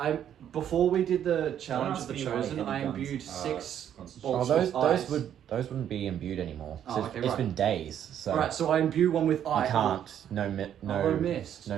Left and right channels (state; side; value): quieter; left; 9.9 dB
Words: before we did the challenge of ask the me why Chosen, heavy I guns imbued are 6 Constitution. bolts Oh, with ice. those wouldn't be imbued anymore. Oh, So okay, it's right. been days, so Alright, so I imbue one with you ice. can't. No mist. No